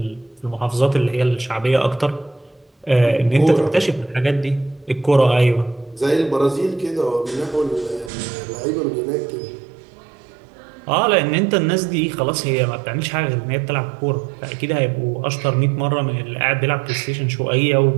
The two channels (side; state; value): left; drops out; at 8.1 s